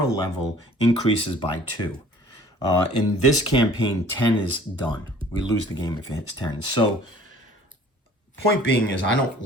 level increases by 2. In this campaign, 10 is done. We lose the game if it hits 10. So point being is I don't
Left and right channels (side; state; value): both; normal; correlation 0.52